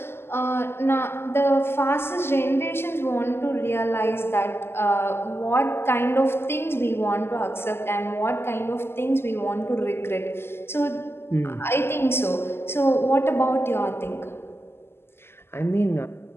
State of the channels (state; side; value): late; right; 0.12 ms